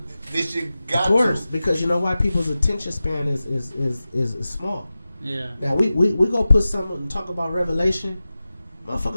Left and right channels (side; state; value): both; inverted; correlation -0.95